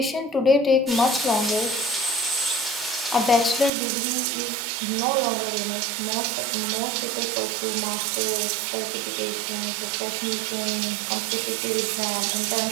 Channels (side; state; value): left; drops out; at 3.7 s